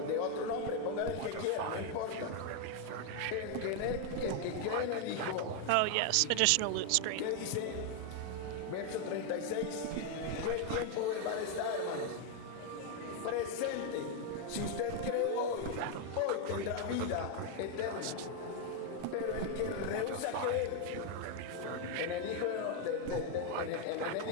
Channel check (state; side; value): different; both; correlation 0.01